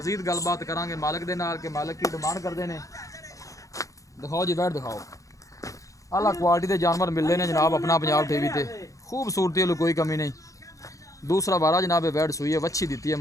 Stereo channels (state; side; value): late; right; 0.16 ms